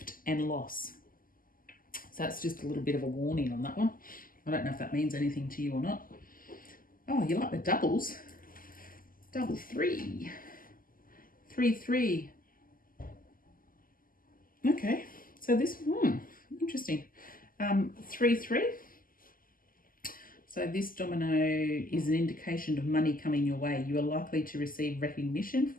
and loss. So that's just a little bit of a warning on that one. I don't know if that means anything to you or not. Oh, you like the doubles. Double three. 3, 3. Okay, so this, interesting. 3, 3. So this domino is an indication of money coming your way. You are likely to receive recognition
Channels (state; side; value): late; right; 0.41 ms